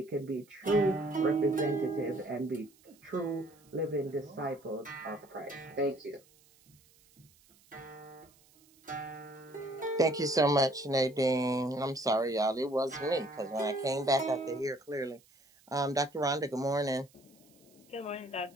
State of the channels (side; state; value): right; noise; hiss, 29 dB below the sound